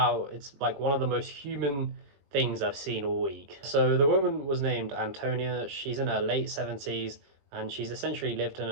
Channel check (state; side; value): late; left; 21 ms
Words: it's like one of the most human things I've seen all week. So the woman was named Antonia. She's in her late 70s and she's essentially lived in